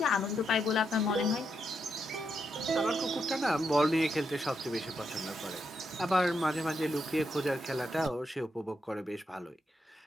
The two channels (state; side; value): normal; both; correlation 0.81